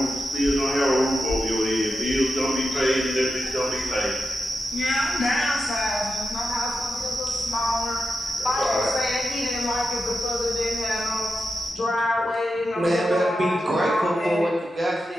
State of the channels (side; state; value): both; normal; correlation 0.89